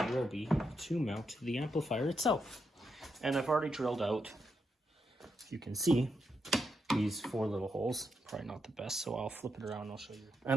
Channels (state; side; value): normal; both; correlation 0.83